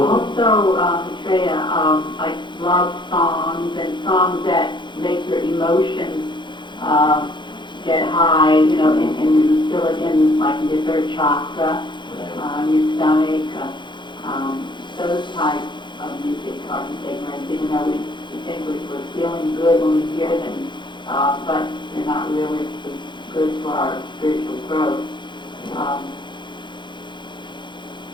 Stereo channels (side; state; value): right; late; 0.23 ms